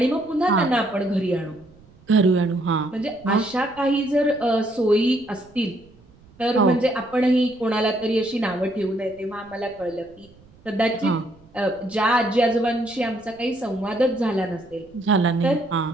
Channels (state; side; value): noise; right; rumble, 27 dB below the sound